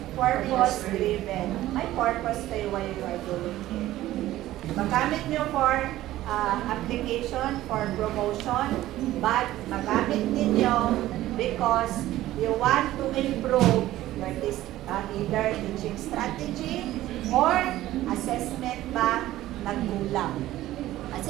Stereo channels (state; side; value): quieter; left; 15.0 dB